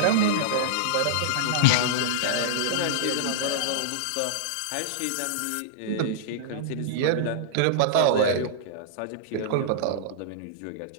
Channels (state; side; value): different; both; correlation -0.02